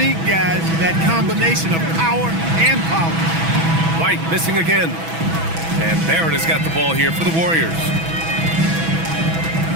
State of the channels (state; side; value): late; left; 6.1 ms